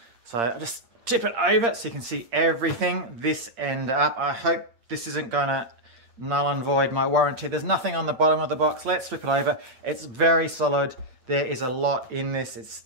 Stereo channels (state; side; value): late; left; 8.6 ms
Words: So I'll just tip it over so you can see everything this end up. I hope this isn't gonna null and void my warranty. There's nothing on the bottom of the box. Let's flip it over. It's very solid. There is a lot in this.